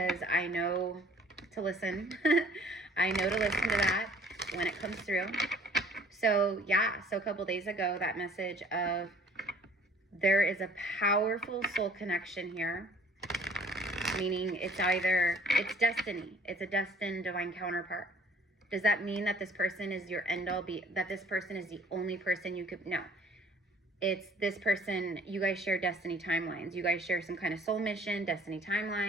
I know to listen. I know to listen to that when it comes through. So yeah, so a couple days ago, that message of there is a powerful soul connection here, meaning it's destiny. It's a destined divine counterpart. Does that mean that this person is your end all that this person is the only person you could, no. It's this person, you guys share destiny timelines. You guys share some kind of soul mission, destiny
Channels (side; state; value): both; normal; correlation 0.55